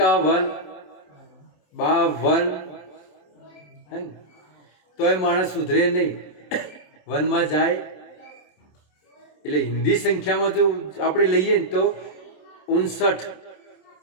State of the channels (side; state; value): right; late; 27 ms